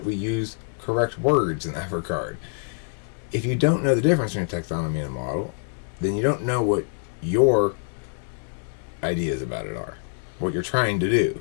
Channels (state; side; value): silent; right; digital silence